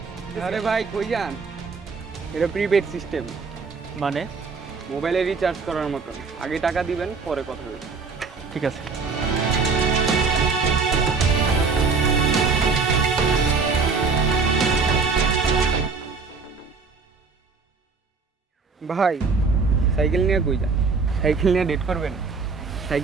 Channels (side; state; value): left; quieter; 4.8 dB